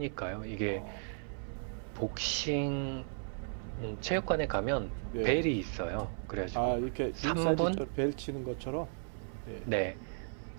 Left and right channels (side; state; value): left; silent; 54 dB below the other